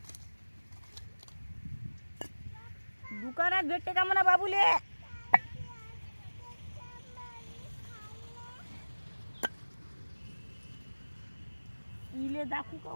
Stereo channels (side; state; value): both; inverted; correlation -1.00